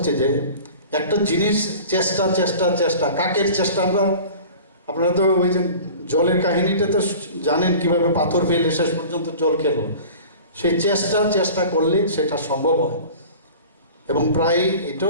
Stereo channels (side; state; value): both; inverted; correlation -0.41